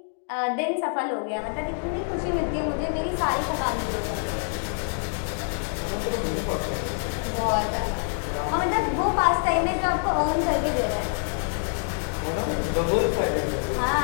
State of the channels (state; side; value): silent; right; 55 dB below the other